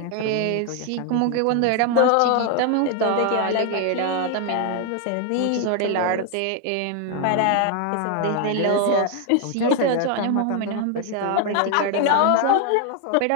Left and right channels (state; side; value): different; both; correlation 0.00